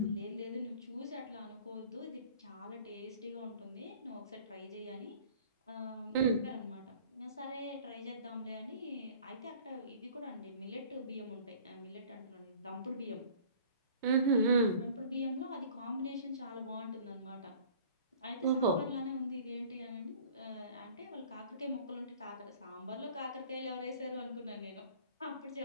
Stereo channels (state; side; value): inverted; both; correlation -0.49